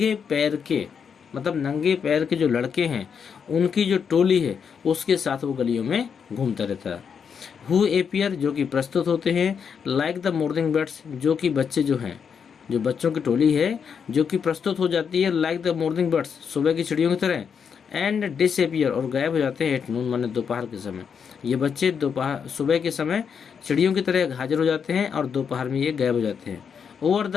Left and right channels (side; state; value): right; quieter; 6.8 dB